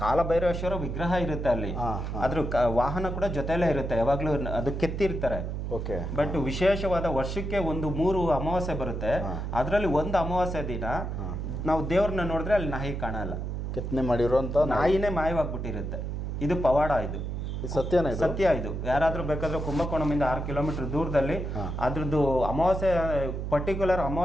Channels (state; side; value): noise; right; hum, 4 dB below the sound